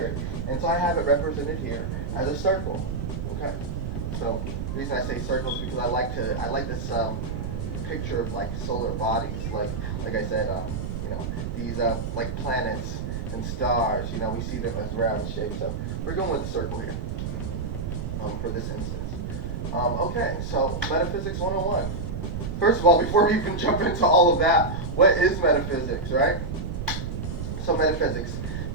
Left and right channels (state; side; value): noise; right; rumble, 4 dB below the sound